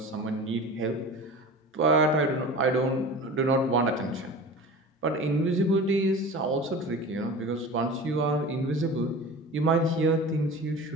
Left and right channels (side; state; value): both; normal; correlation 0.35